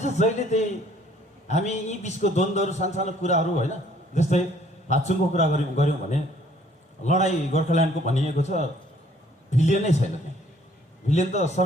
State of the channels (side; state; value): both; normal; correlation 0.60